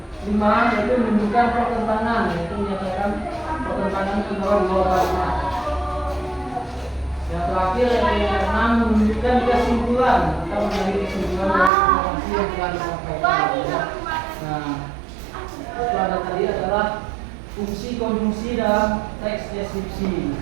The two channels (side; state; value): left; drops out; at 11.7 s